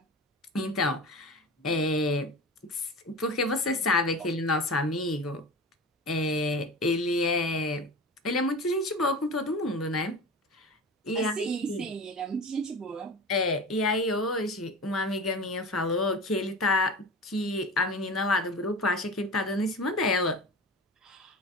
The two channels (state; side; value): normal; both; correlation 0.32